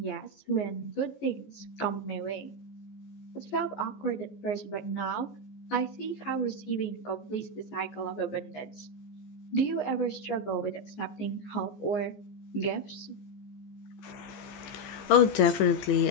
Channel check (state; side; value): late; right; 15 ms